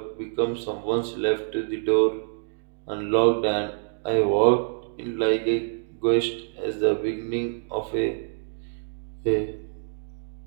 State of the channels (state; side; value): silent; left; digital silence